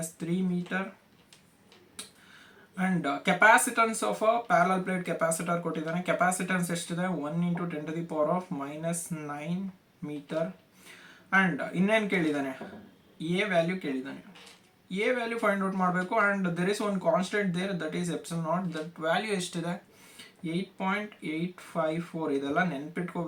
metre. And capacitance of a parallel plate capacitor ಕೊಟ್ಟಿದ್ದಾನೆ. Capacitance ಎಷ್ಟಿದೆ 1 × 10⁻⁻9 metre. And ಇನ್ನೇನು ಕೇಳಿದ್ದಾನೆ, ಎ ವ್ಯಾಲ್ಯೂ ಕೇಳಿದ್ದಾನೆ. ಎ ವ್ಯಾಲ್ಯೂ ಫೈಂಡ್ ಔಟ್ ಮಾಡಬೇಕು. And there is one constant there, that is epsilon naught. That value ಎಷ್ಟಿದೆ 8.854. ಇದೆಲ್ಲ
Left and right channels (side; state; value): both; identical; correlation 1.00